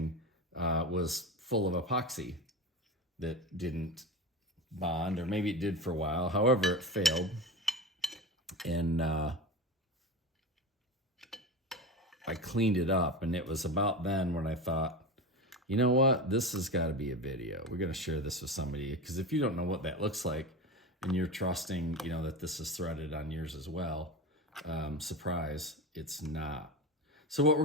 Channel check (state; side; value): normal; both; correlation 0.25